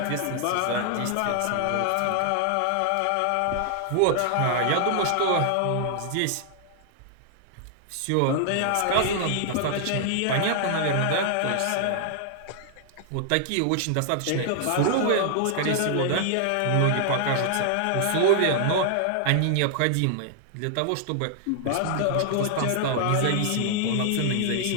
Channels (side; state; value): both; different; correlation -0.01